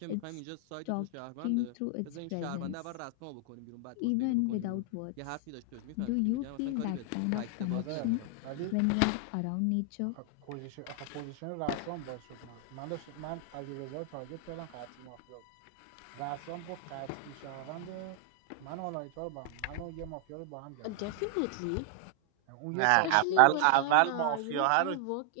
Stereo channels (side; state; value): both; different; correlation 0.00